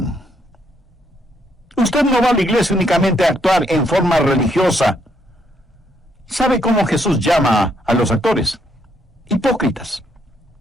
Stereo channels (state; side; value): normal; both; correlation 0.73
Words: Usted no va a la iglesia únicamente a actuar en forma religiosa. ¿Sabe cómo Jesús llama a los actores? Hipócritas.